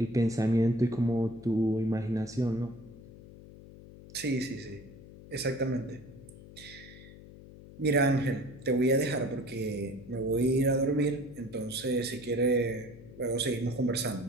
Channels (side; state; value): left; noise; hum, 18 dB below the sound